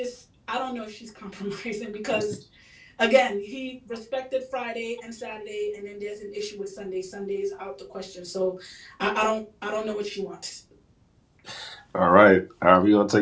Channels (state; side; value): identical; both; correlation 1.00